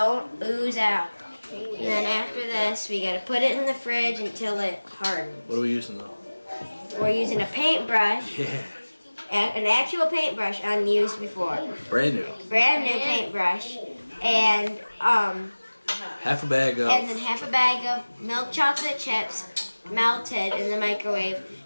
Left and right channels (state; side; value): inverted; both; correlation -1.00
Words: ooze out. And then after this, we gotta put it in the fridge until it hardens. What are we using though? We're using a paintbrush, Yeah. an actual paintbrush unused before. Brand new. Brand new paintbrush. And Half a bag of. and then half a bag of milk chocolate chips melted in the microwave.